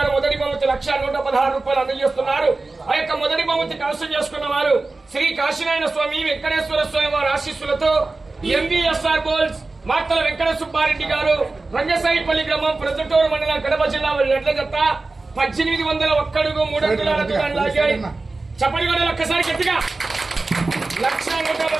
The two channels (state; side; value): quieter; left; 3.4 dB